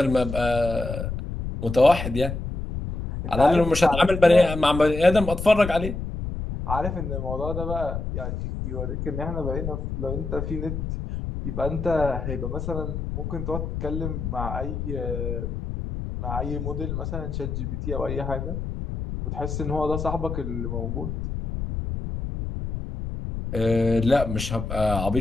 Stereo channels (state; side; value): noise; left; rumble, 5 dB below the sound